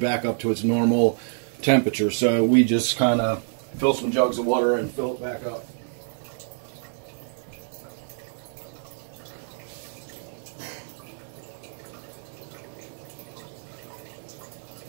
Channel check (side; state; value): left; silent; digital silence